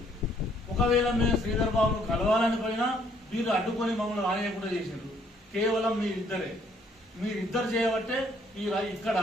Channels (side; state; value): both; normal; correlation 0.65